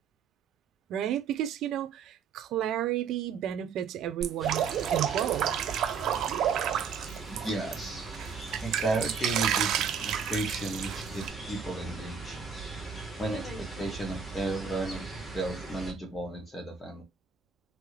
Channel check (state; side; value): quieter; left; 6.3 dB